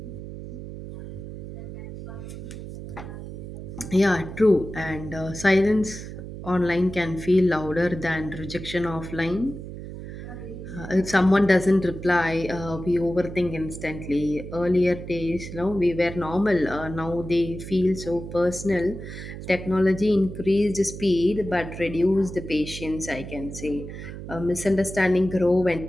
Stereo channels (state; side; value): noise; right; hum, 10 dB below the sound